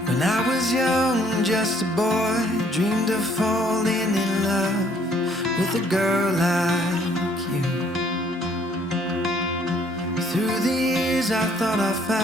When I was young, just a boy, dreamed of falling in love with a girl like you. Through the years I thought I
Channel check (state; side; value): normal; both; correlation 0.63